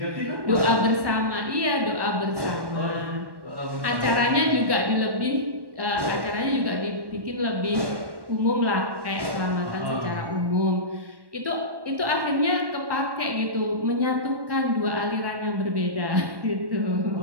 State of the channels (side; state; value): left; late; 1.1 ms